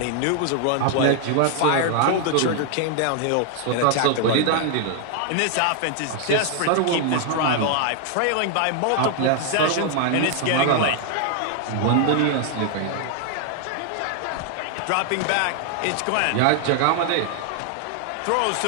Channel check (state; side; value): different; both; correlation 0.00